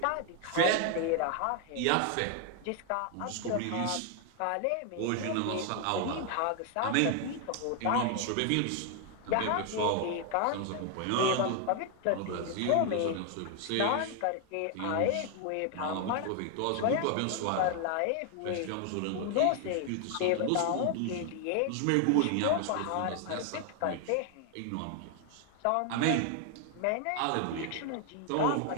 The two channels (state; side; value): different; both; correlation 0.00